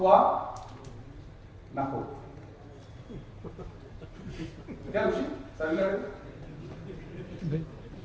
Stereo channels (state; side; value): identical; both; correlation 1.00